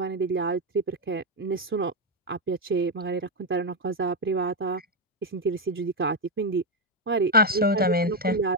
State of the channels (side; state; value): both; normal; correlation 0.05